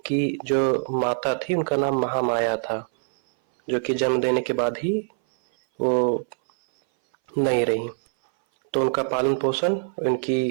जो माता थी उनका नाम महामाया था, जो कि जन्म देने के बाद ही वो नहीं रही। तो उनका पालन पोषण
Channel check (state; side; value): silent; left; 60 dB below the other